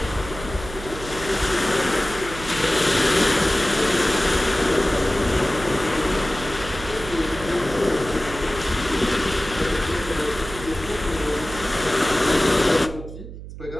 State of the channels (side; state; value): right; noise; hum, 12 dB below the sound